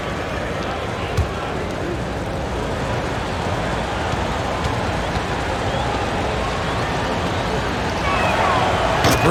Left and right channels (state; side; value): identical; both; correlation 1.00